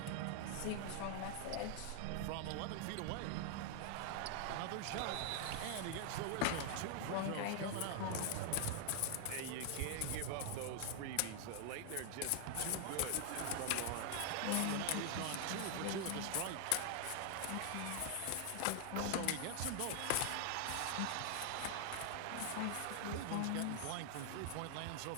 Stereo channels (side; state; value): both; different; correlation 0.00